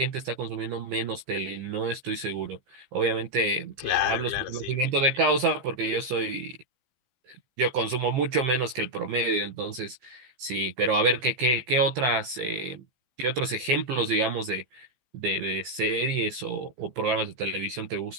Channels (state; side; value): late; left; 15 ms